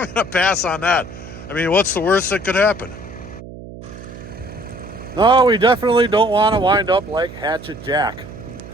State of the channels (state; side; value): noise; right; hum, 14 dB below the sound